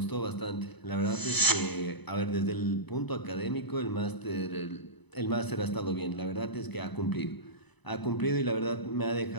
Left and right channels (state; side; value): late; right; 1.0 ms